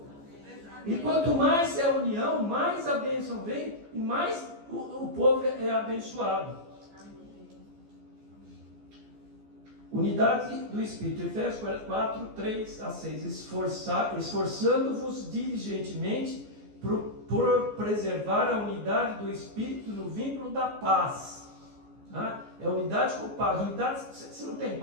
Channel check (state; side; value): late; left; 14 ms